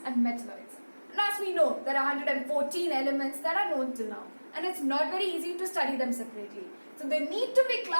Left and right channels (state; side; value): inverted; both; correlation -1.00